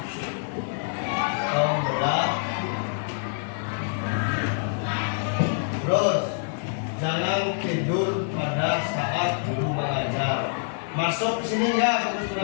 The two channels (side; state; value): right; silent; digital silence